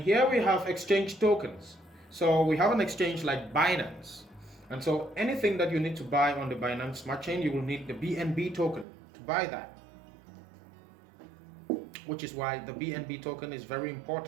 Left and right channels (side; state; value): left; drops out; at 8.8 s